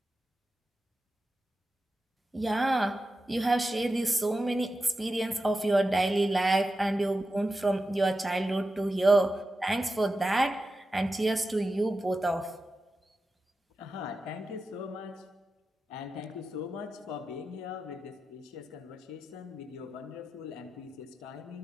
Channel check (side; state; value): both; normal; correlation 0.92